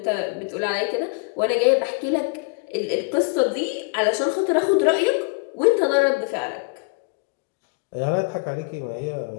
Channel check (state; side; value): quieter; right; 30.7 dB